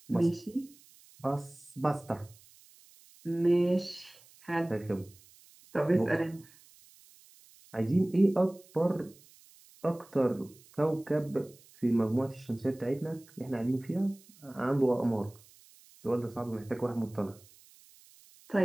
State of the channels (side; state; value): right; noise; hiss, 26 dB below the sound